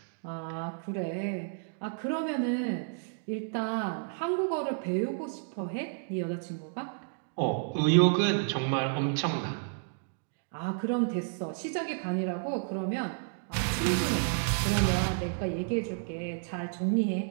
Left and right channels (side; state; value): left; silent; digital silence